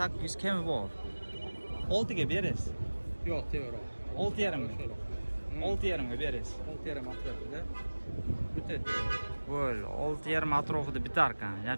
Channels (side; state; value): both; inverted; correlation -1.00